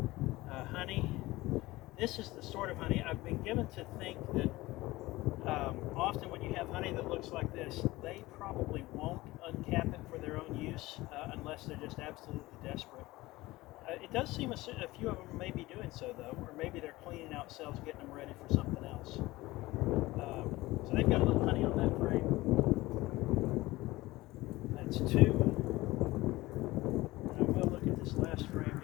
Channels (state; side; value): quieter; right; 19.2 dB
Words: honey. This is the sort of honey I've been given to think that often when you have honey that looks like this, they probably won't uncap it for their own use unless they're just absolutely desperate. It does seem a few of them may be doing so though, or maybe they're cleaning out cells, getting them ready for something else. So they've got a little honey on that frame. That's 2. And I will look at this last frame